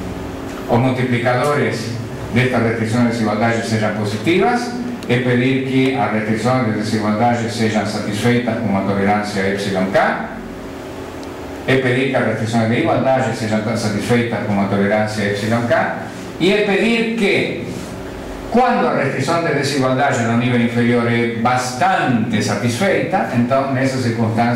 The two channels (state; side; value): identical; both; correlation 1.00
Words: os multiplicadores destas restrições de desigualdade sejam positivas, é pedir que as restrições de desigualdade sejam satisfeitas com uma tolerância epsilon K, é pedir que as restrições de igualdade sejam satisfeitas com uma tolerância epsilon K, e é pedir que, quando a restrição de desigualdade no nível inferior é bastante satisfeita, então, nessa